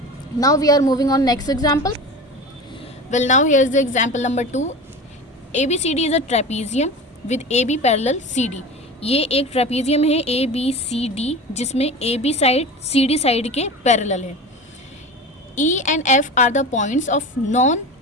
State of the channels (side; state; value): both; normal; correlation 0.31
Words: Now we are moving on next example. Well now here is the example number 2। ABCD is a trapezium with AB parallel CD। ये एक ट्रेपीजियम है ABCD जिसमें AB साइड CD साइड के पैरेलल है। E and F are the points of